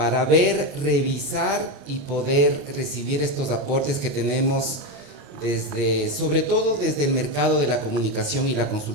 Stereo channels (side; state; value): left; late; 28 ms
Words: ver, revisar y poder recibir estos aportes que tenemos sobre todo desde el mercado de la comunicación y la